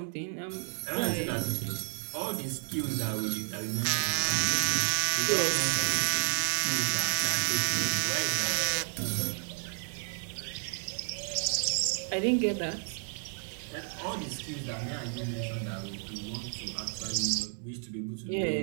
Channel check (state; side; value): silent; left; 57 dB below the other